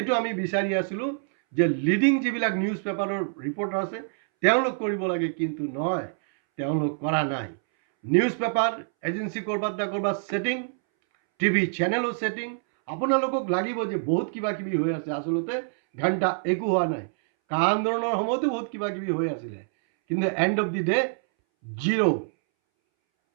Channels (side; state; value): left; silent; 61 dB below the other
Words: আমি বিচাৰি আছিলোঁ যে লিডিং যিবিলাক নিউজ পেপাৰৰ ৰিপৰ্টাৰ আছে তেওঁলোক কৰিব লাগে, কিন্তু নহয়, তেওঁলোক কৰা নাই। নিউজ পেপাৰ এজেঞ্চি ক'ৰবাত না ক'ৰবাত ছেটিং, টিভি চেনেলো ছেটিং। আপোনালোকক লাগিব যে বহুত কিবা কিবি হৈ আছে, আচলতে ঘণ্টা একো হোৱা নাই। কা আন্দোলনৰ সময়তো বহুত কিবা কিবি হৈ আছিলে, কিন্তু and of the day zero'.